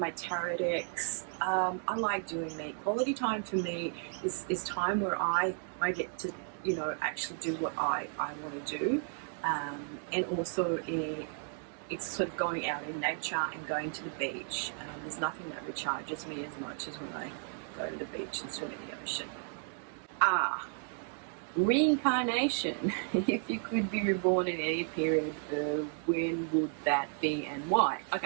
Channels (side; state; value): left; silent; 55 dB below the other